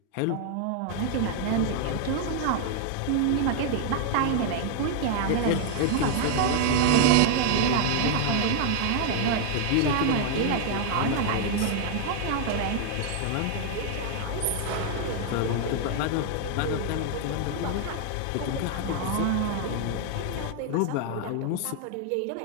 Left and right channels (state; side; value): different; both; correlation 0.00